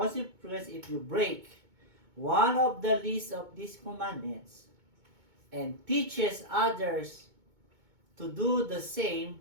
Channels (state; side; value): late; left; 2.2 ms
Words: if you break one of the least of these commandments and teaches others to do the same